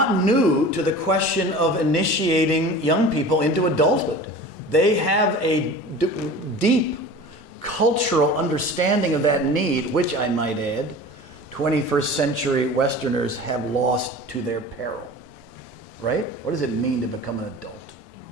new to the question of initiating young people into adulthood. They have a deep cultural understanding of that need, which I might add, 21st century Westerners have lost to their peril, right? What does it mean to become an adult?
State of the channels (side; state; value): both; normal; correlation 0.38